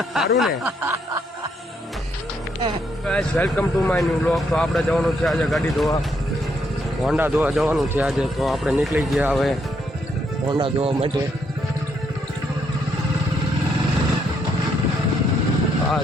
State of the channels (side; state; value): both; normal; correlation 0.74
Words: સારું ને? Guys welcome to my new vlog. તો આપણે જવાનું છે આજે ગાડી ધોવા, હોન્ડા ધોવા જવાનું છે આજે. તો આપણે નીકળી ગયા હવે હોન્ડા ધોવા માટે. આ